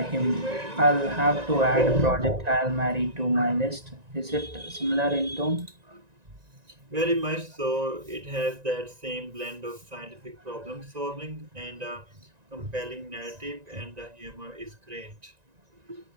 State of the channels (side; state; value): left; late; 1.9 ms